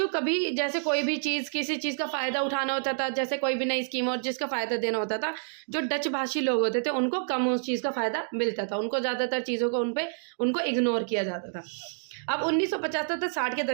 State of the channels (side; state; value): left; silent; digital silence